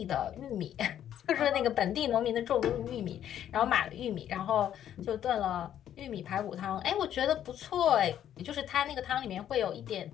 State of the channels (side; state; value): right; quieter; 10.5 dB